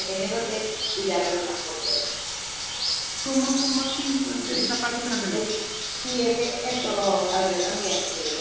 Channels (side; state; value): left; noise; rumble, 18 dB below the sound